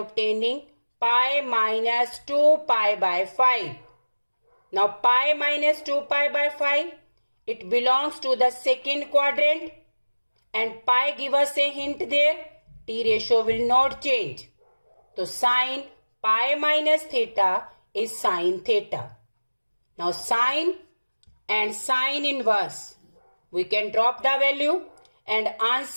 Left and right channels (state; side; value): inverted; both; correlation -1.00